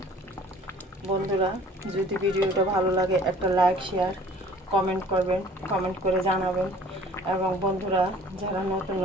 বন্ধুরা, যদি ভিডিওটা ভালো লাগে একটা লাইক, শেয়ার, কমেন্ট করবেন, কমেন্ট করে জানাবেন। এবং বন্ধুরা যারা নতুন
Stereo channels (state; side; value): normal; both; correlation 0.51